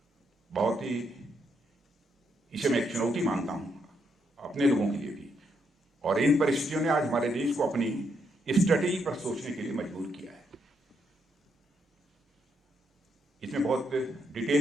बहुत ही, इसे मैं एक चुनौती मानता हूं अपने लोगों के लिए भी, और इन परिस्थितियों ने आज हमारे देश को अपनी स्ट्रेटेजी पर सोचने के लिए मजबूर किया है। इसमें बहुत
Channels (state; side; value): normal; both; correlation 0.77